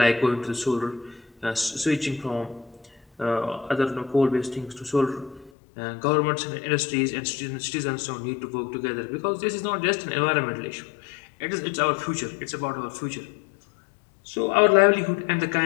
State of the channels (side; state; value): right; drops out; at 5.5 s